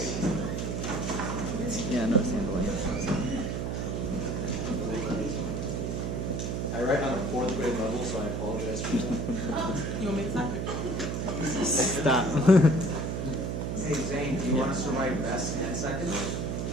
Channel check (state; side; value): noise; right; hum, 1 dB below the sound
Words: Yeah, no handling it. I write on a 4th grade level, so I apologize for that. You want me to type it? Stop. Hey Zain, do you want us to write best and second?